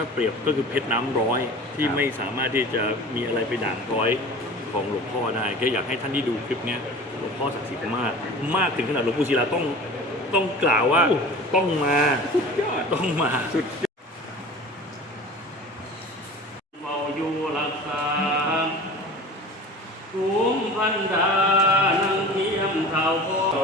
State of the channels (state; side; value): normal; both; correlation 0.39